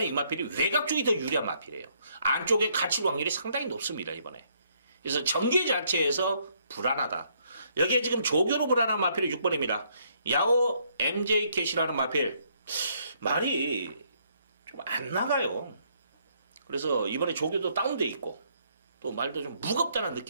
이 마필이 외곽 쪽이 더 유리한 마필이에요. 안쪽에 갇힐 확률이 상당히 높습니다, 이번에. 그래서 전개 자체에서 불안하다. 여기에 지금 조교로 불안한 마필이 6번입니다. 야오 MJ 캣이라는 마필. 말이 좀 안 나가요. 그래서 이번에 조교도 다운돼 있고 또 말도 좀 무겁다는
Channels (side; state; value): both; inverted; correlation -0.70